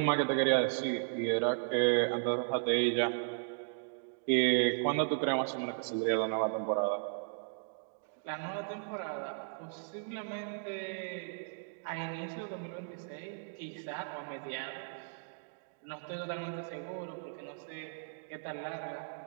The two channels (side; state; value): left; silent; digital silence